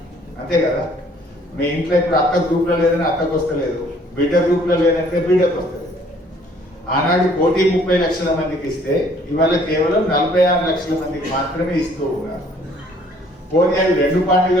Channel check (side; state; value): both; normal; correlation 0.59